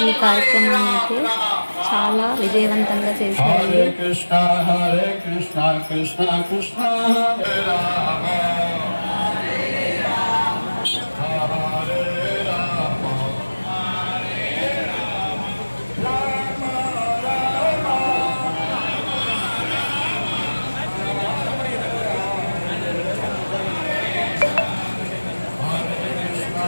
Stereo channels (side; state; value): both; inverted; correlation -1.00